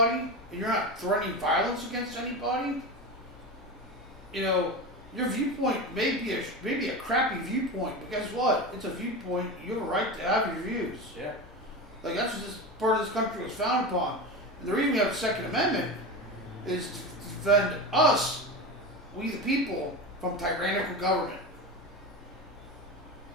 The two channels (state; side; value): normal; both; correlation 0.23